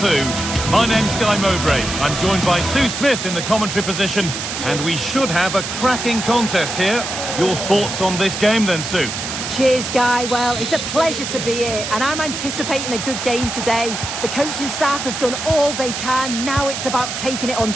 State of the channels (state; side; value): noise; right; hiss, 5 dB below the sound